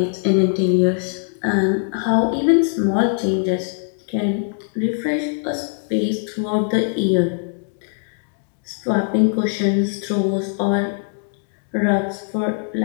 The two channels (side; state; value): right; silent; digital silence